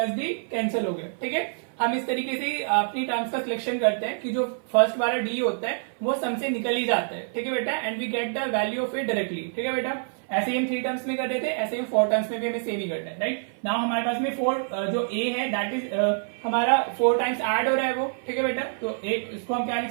D cancel हो गया। ठीक है, हम इस तरीके से अपनी टर्म्स का सिलेक्शन करते हैं कि जो फर्स्ट वाला डी होता है वो सम से निकल ही जाता है, ठीक है बेटा, and we get the value of it directly, ठीक है बेटा। ऐसे ही हम 3 टर्म्स में कर रहे थे, ऐसे ही 4 टर्म्स में भी हमें सेम ही करना है, राइट। नाउ हमारे पास में 4 जो ए है दैट इज हमारा 4 टाइम्स ऐड हो रहा है वो, ठीक है बेटा। तो एक इसको हम क्या लिख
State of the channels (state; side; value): silent; left; 57 dB below the other